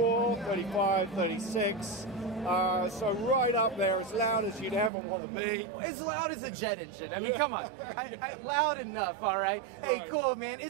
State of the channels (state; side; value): drops out; left; at 4.9 s